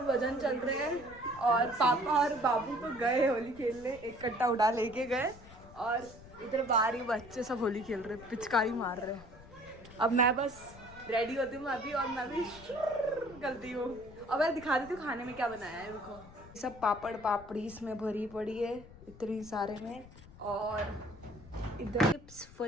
वजन चल रहे हैं और पापा और बाबू तो गए होली खेलने, एक कट्टा उड़ा लेके गए और इधर बाहर ही बच्चे सब होली खेल रहे, पिचकारी मार रहे हैं। अब मैं बस रेडी होती हूँ अभी और मैं भी करती हूँ। अब मैं दिखा देती हूँ खाने में क्या बनाया है। रुको, सब पापड़ पापड़ी इसमें भरी पड़ी है इतनी सारे में, और इधर चिप्स,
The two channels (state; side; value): noise; left; rumble, 19 dB below the sound